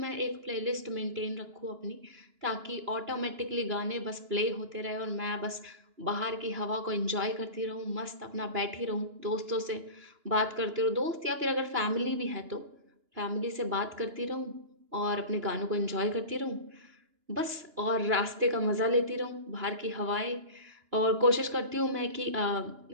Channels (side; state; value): left; late; 2.9 ms